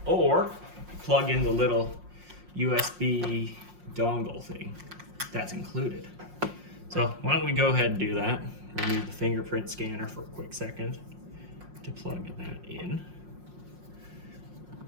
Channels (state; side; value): late; left; 5.6 ms